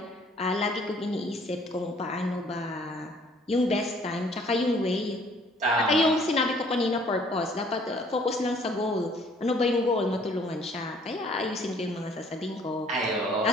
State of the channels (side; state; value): both; normal; correlation 0.59